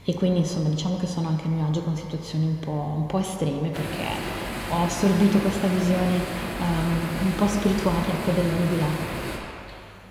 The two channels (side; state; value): both; identical; correlation 1.00